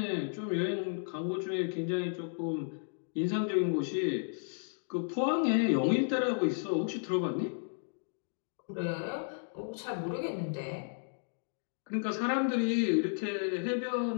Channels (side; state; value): right; silent; digital silence